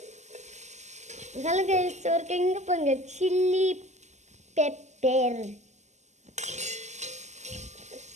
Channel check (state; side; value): late; left; 0.33 ms